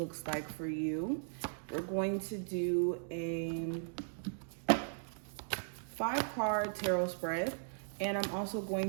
like for you. We're going to do a 5-card tarot spread, and I'm also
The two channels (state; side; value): silent; left; digital silence